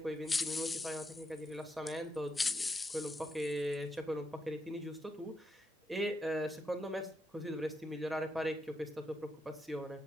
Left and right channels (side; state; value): both; normal; correlation 0.83